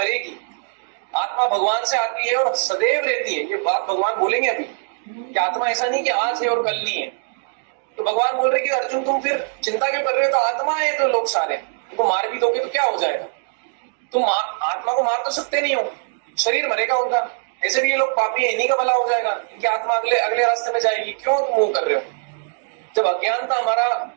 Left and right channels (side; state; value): left; silent; digital silence